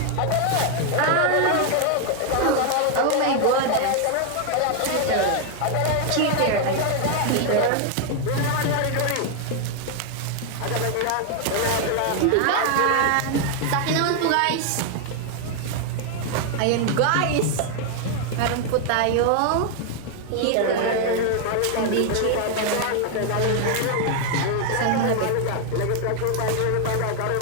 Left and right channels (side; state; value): both; different; correlation 0.00